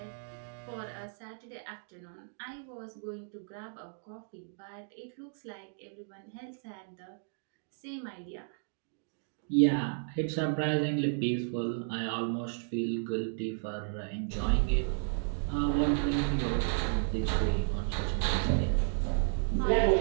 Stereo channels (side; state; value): left; silent; digital silence